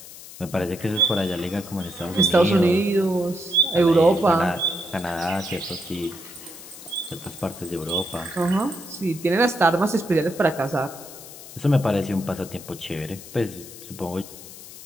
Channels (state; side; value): noise; left; hiss, 16 dB below the sound